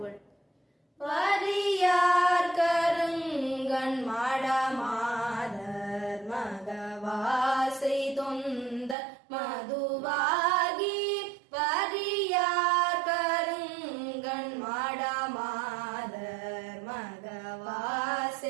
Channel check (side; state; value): left; drops out; at 9.0 s